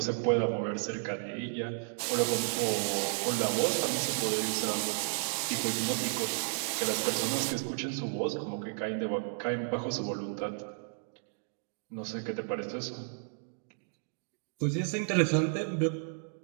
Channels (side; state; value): left; silent; digital silence